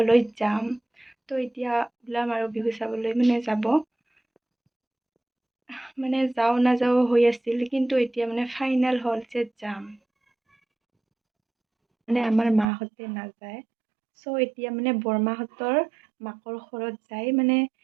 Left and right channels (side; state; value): left; drops out; at 12.7 s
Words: যাম। তো এতিয়া ওলাম আৰু বিহু চাবলৈ যাব। যাওঁ নাযাওঁ হৈ আছিল, কিন্তু এতিয়া ফাইনেল হ'ল যে যাম। আমাৰ মাহঁতে নাযায়। চ' এতিয়া বৰমাহঁতৰ মাকৰ ঘৰত যাই